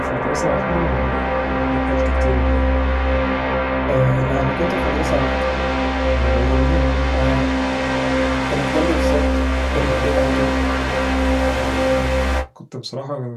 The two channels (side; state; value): both; identical; correlation 1.00